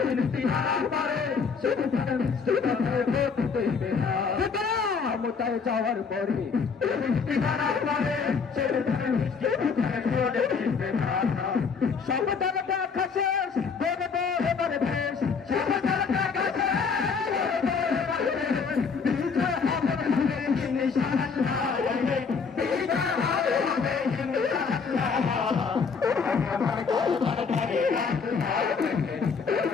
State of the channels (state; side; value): quieter; right; 5.5 dB